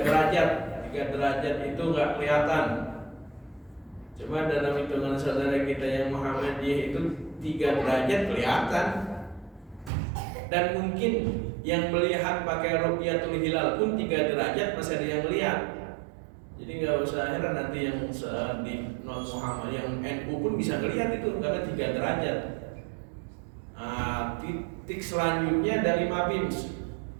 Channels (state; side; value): drops out; left; at 9.9 s